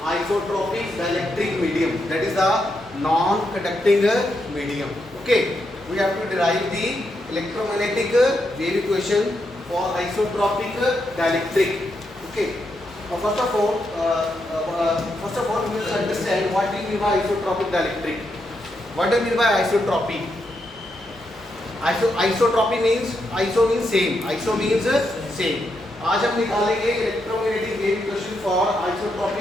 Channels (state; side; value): normal; both; correlation 0.82